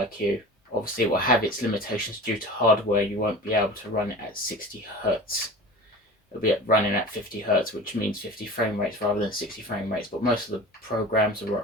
Obviously, it will have its limitations due to hardware. You won't be able to run it at 60 Hertz. It'll be running at 50 Hertz, which means 50 frame rates rather than 60 frame rates. But most of the programs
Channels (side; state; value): both; normal; correlation 0.36